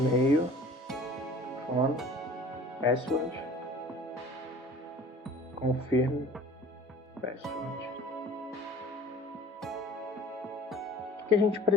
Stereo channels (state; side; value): normal; both; correlation 0.46